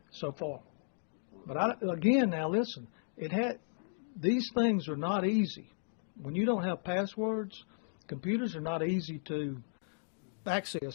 So far. But again, now listen, these things are not easy. When you don't have passwords, computers are not easy to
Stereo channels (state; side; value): silent; right; digital silence